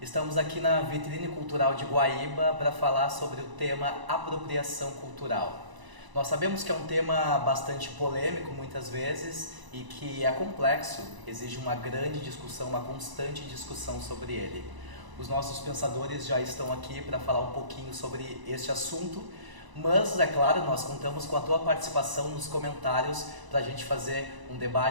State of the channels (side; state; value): left; late; 1.0 ms